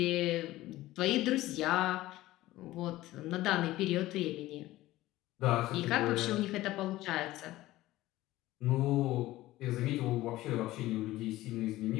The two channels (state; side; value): quieter; right; 16.7 dB